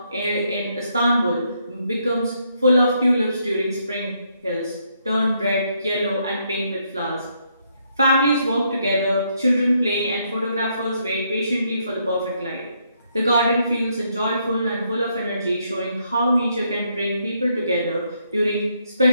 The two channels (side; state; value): both; inverted; correlation -0.74